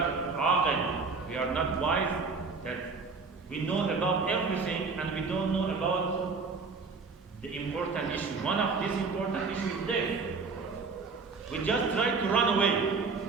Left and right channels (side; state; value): left; quieter; 4.5 dB